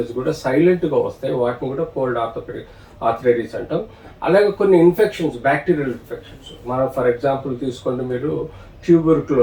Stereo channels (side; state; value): both; identical; correlation 1.00